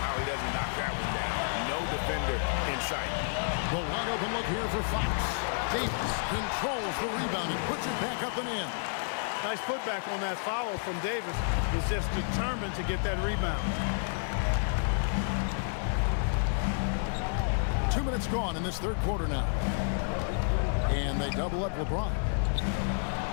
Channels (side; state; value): right; silent; digital silence